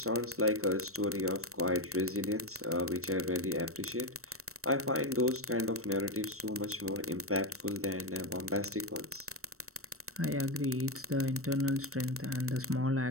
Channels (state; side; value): late; left; 0.64 ms